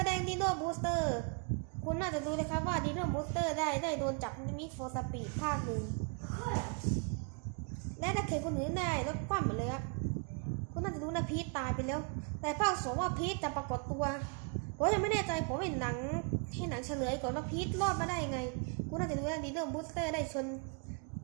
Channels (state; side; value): quieter; left; 38.1 dB